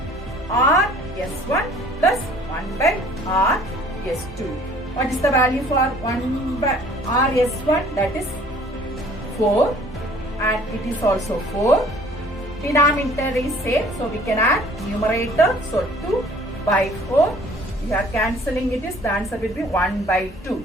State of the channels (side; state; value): both; normal; correlation 0.54